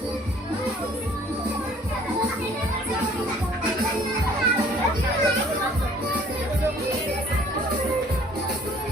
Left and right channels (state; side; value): normal; both; correlation 0.55